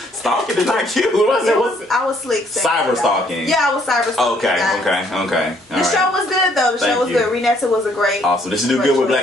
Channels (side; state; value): both; normal; correlation 0.66